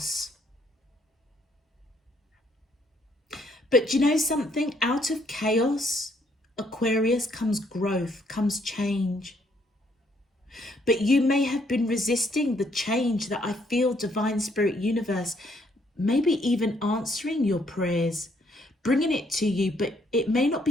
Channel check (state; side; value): normal; both; correlation 0.69